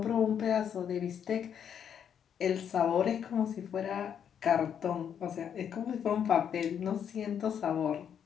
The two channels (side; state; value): right; quieter; 8.4 dB